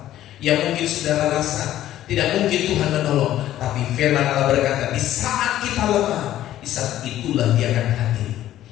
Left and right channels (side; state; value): right; quieter; 13.0 dB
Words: yang mungkin saudara rasa tidak mungkin Tuhan menolong, tapi firman Allah berkata, di saat kita lemah, di saat itulah Dia akan hadir,